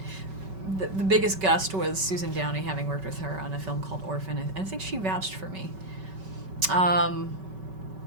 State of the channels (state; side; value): late; left; 5.3 ms